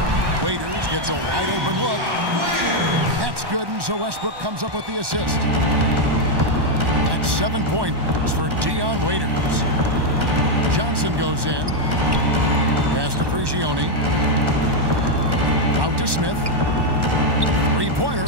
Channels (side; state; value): left; late; 1.1 ms